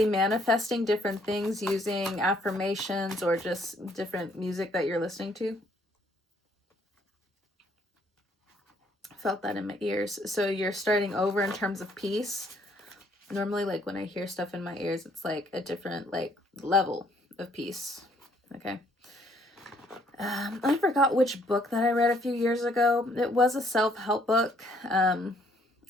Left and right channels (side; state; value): both; normal; correlation 0.65